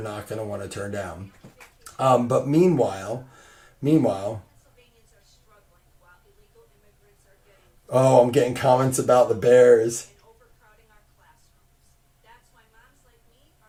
not going to want to turn down. But meanwhile, oh, I'm getting comments about the Bears.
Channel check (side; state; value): both; identical; correlation 1.00